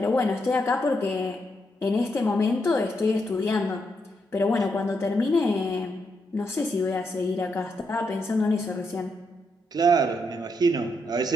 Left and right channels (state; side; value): normal; both; correlation 0.80